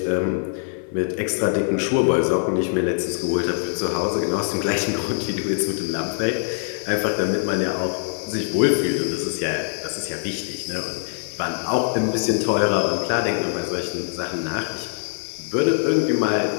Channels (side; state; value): right; silent; 58 dB below the other